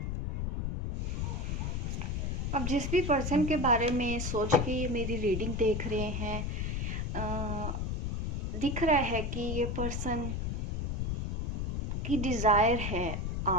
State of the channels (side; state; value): left; noise; rumble, 1 dB below the sound